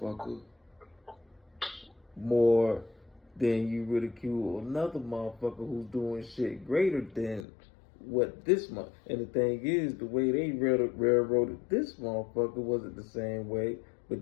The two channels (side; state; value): right; drops out; at 7.5 s